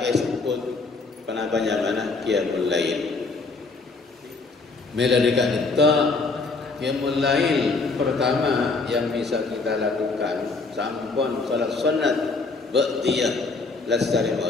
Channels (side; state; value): right; quieter; 3.9 dB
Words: esebut penapanya mana qiyamul lail. Mela dekat dinto qiyamul lail pertama yang bisa kita lakukan sampun salat sunat ba'diyah lastari